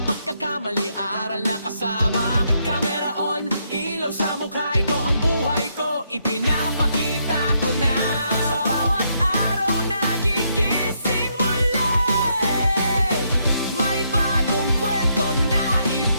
pagkakamali, aral na kasama. Camera on, ilaw sa mukha. Ito ang buhay ko, ipinapakita ko na. Sa bawat araw nagigising muli, may bagong kwento na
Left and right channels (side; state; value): both; inverted; correlation -0.76